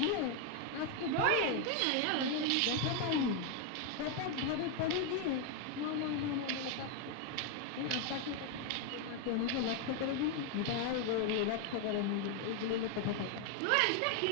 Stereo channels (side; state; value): both; different; correlation 0.01